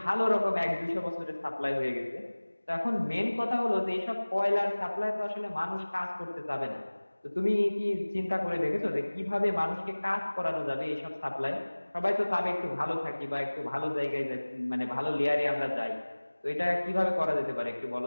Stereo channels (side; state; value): both; inverted; correlation -1.00